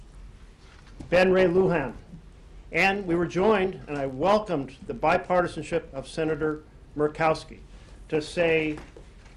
Ben Ray Lujan, and we were joined, and I welcomed the bipartisanship of Senator Murkowski to say,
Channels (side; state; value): both; identical; correlation 1.00